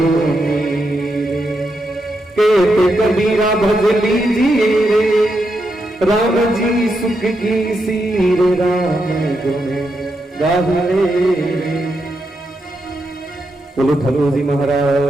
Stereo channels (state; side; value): normal; both; correlation 0.83